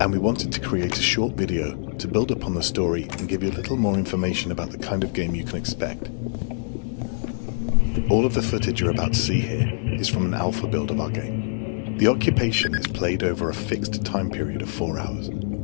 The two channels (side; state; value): right; silent; digital silence